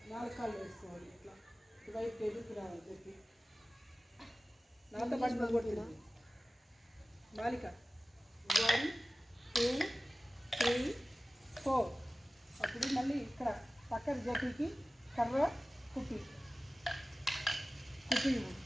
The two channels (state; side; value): normal; both; correlation 0.96